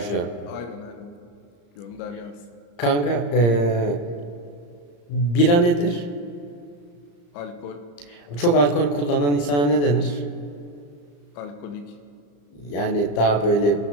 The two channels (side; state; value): right; late; 34 ms